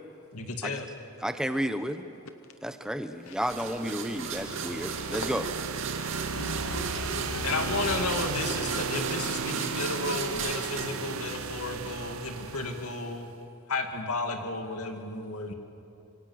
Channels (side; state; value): both; normal; correlation 0.23